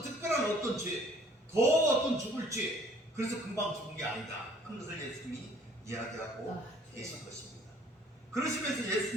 특별한 어떤 죄, 더 어떤 죽을 죄, 그래서 금방 죽은 게 아니다 하는 것을 예수님이 이야기하고 계신 것입니다. 그러시면서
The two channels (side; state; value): both; normal; correlation 0.57